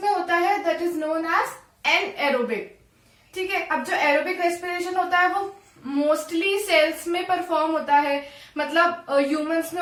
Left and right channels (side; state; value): both; identical; correlation 1.00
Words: में होता है that is known as anaerobic. ठीक है, अब जो एरोबिक रेस्पिरेशन होता है वो मोस्टली सेल्स में परफॉर्म होता है. मतलब ह्यूमंस में